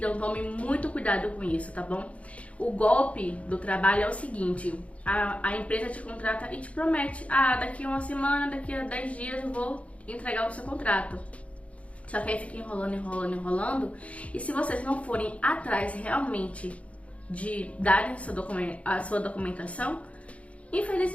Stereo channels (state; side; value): late; right; 0.064 ms